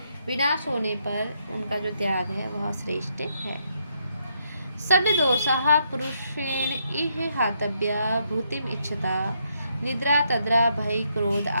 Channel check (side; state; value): both; inverted; correlation -0.75